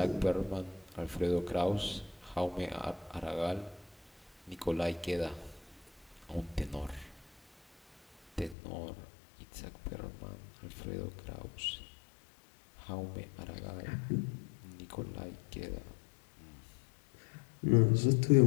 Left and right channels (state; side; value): drops out; right; at 8.6 s